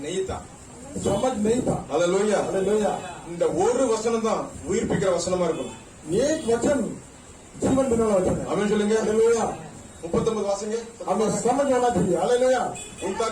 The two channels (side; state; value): both; identical; correlation 1.00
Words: नहीं था समझ नहीं था। ஹalleluya हालेलुया। இந்த ஒரு வசனம் தான் உயிர்ப்பிக்கிற வசனமா இருக்கும் एक वचन जीवन देने वाला वचन है। ஆமென் சொல்லுங்க हालेलुया। 39 வாசிங்க हमें समझ होना चाहिए। हालेलुया।